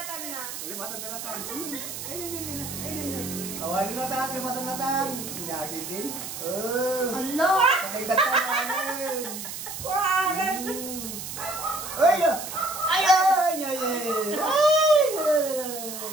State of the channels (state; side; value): noise; right; hiss, 8 dB below the sound